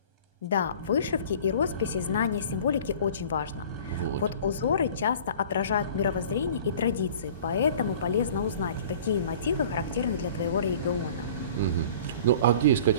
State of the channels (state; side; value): inverted; both; correlation -0.46